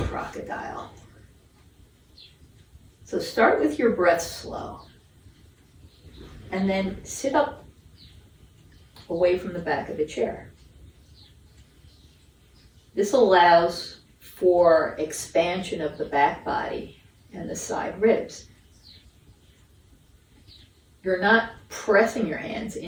crocodile. So start with your breath slow. And then sit up away from the back of the chair. This allows for expansion of the back body and the side ribs. You're not pressing your hands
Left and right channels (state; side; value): identical; both; correlation 1.00